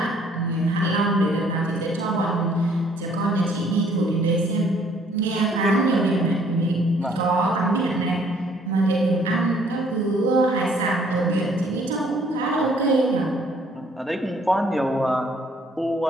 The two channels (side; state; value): both; normal; correlation 0.62